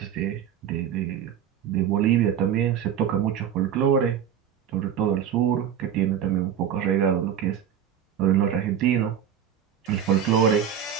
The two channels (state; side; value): quieter; left; 9.0 dB